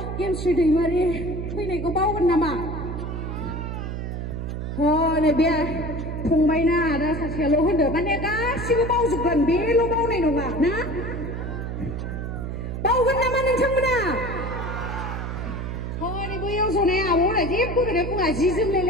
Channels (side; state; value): right; noise; hum, 5 dB below the sound